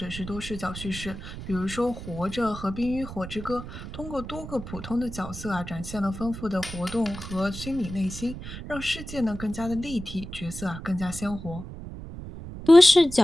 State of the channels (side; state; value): right; noise; rumble, 10 dB below the sound